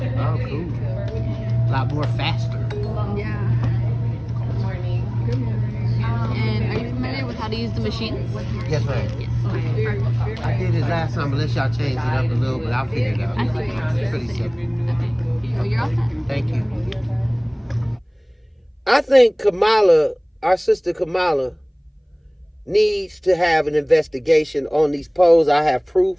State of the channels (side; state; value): both; identical; correlation 1.00